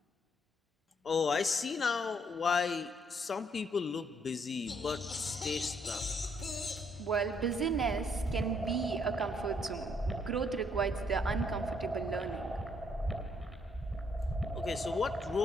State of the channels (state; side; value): normal; both; correlation 0.70